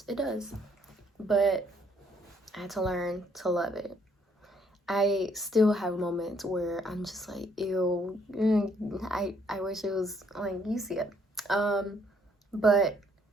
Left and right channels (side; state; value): both; normal; correlation 0.67